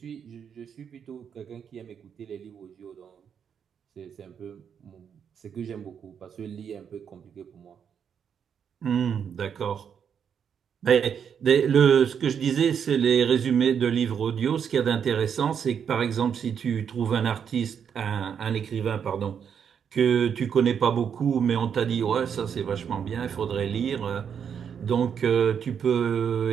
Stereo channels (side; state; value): left; quieter; 7.6 dB